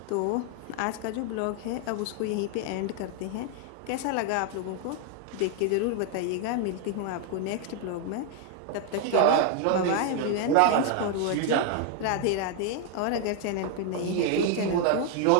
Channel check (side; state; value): both; different; correlation 0.00